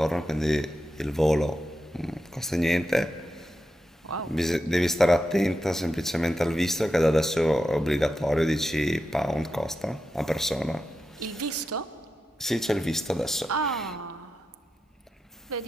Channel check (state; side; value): normal; both; correlation 0.89